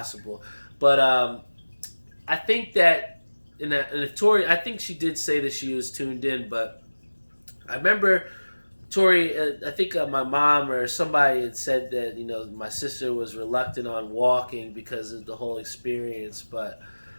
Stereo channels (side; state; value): both; inverted; correlation -1.00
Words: But I think that if Tori, I think she did say that she was tuned in, but I remember Tori, I think my mom or somebody had said that my sister was reluctant on walking because of the whole experience, but